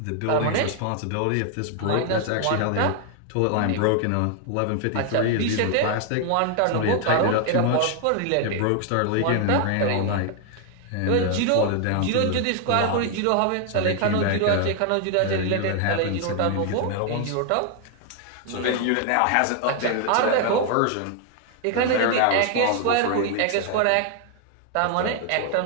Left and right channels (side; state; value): both; different; correlation 0.00